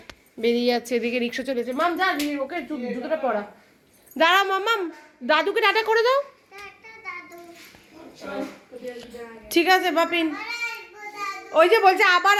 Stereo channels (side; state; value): both; identical; correlation 1.00